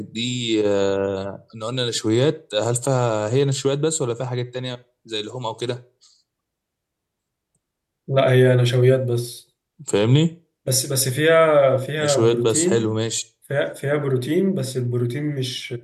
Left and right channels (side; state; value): both; identical; correlation 1.00